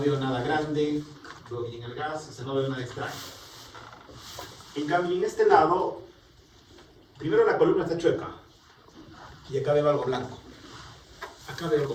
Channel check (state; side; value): identical; both; correlation 1.00